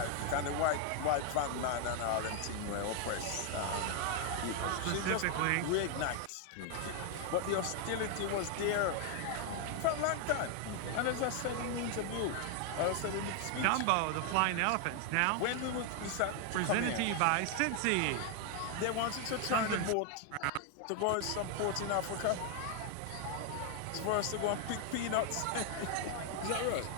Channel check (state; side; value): different; both; correlation 0.00